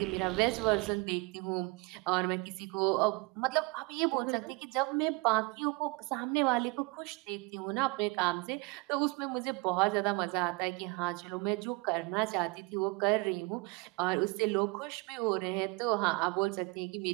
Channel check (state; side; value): quieter; left; 26.9 dB